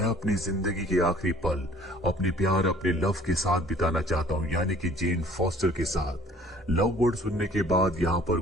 अपनी जिंदगी के आखिरी पल अपने प्यार अपने लव के साथ बिताना चाहता हूँ, यानी कि जेन फोस्टर के साथ। लव वर्ड सुनने के बाद यहाँ पर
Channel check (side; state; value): both; normal; correlation 0.55